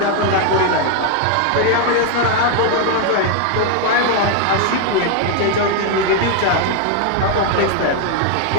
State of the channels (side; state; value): both; different; correlation 0.01